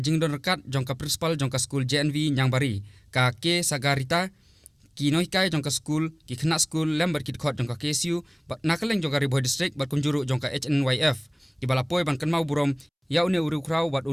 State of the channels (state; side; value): identical; both; correlation 1.00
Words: jingdon rekat jong ka principal jong ka skul JNV Nyangbari ka ke sagarita Kynmaw jong ka skul ki khna skul lembar kit khot jong ka KSU bat nakaleng jong ka Bhoi district bat kunjuru jong ka HNYF di balapoi ban Kynmaw burom ya une uru krau bat